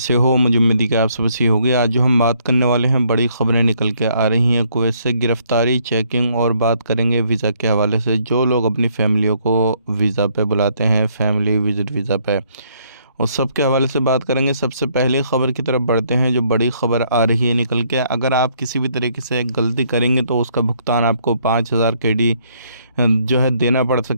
हो? मुझे उम्मीद है कि आप सब अच्छी होगी। आज जो हम बात करने वाले हैं, बड़ी ख़बरें निकल के आ रही हैं कुवैत से। गिरफ़्तारी, चेकिंग और बात करेंगे वीज़ा के हवाले से। जो लोग अपनी फ़ैमिलियों को वीज़ा पे बुलाते हैं, फैमिली विज़िट वीज़ा पे, उस सब के हवाले से बात करेंगे। सबसे पहले ख़बर की तरफ बढ़ते हैं, जो बड़ी ख़बर आ रही है निकल के। अगर आप किसी भी तरीके से गलती करेंगे तो उसका भुगतान आपको 5000 केडी जो है देना पड़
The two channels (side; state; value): both; inverted; correlation -0.68